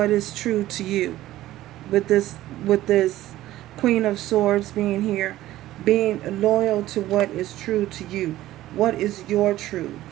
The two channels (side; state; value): left; quieter; 15.0 dB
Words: is true to you. With this Queen of Swords being here, being loyal to what is true to you. What is your truth?